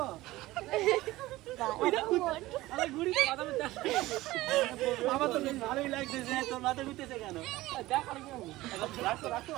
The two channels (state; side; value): quieter; left; 17.8 dB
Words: আমার তো বেশ ভালোই লাগতেছে, তোর মাথা ঘুরতেছে কেন?